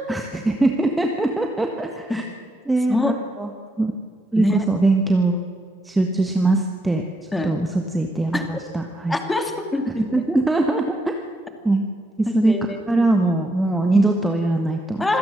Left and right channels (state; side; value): normal; both; correlation 0.79